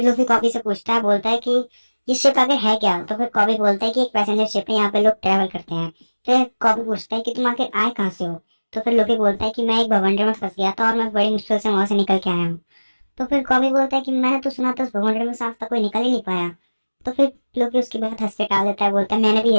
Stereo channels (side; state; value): both; inverted; correlation -1.00